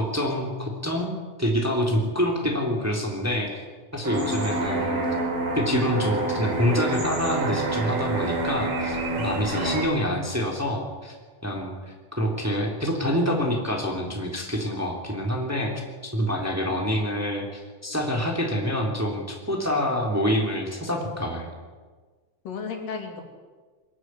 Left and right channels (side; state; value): both; normal; correlation 0.20